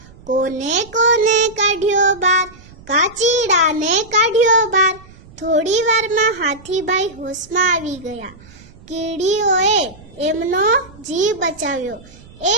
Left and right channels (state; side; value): noise; right; rumble, 22 dB below the sound